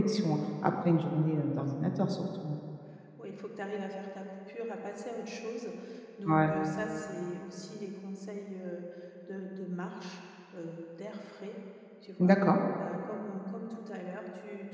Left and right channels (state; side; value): identical; both; correlation 1.00